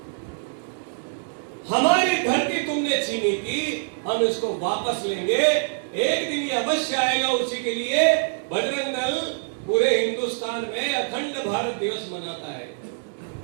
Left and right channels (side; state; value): left; silent; digital silence